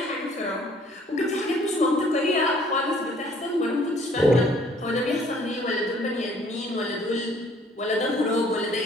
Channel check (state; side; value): normal; both; correlation 0.59